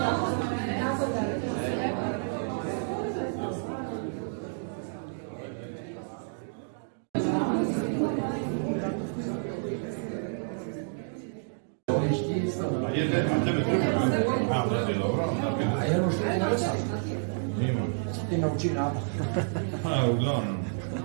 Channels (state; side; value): silent; left; digital silence